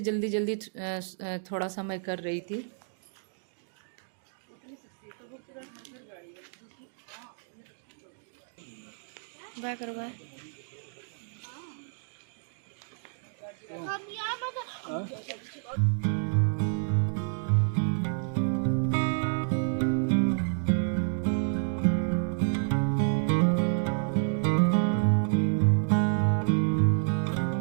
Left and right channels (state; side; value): silent; left; digital silence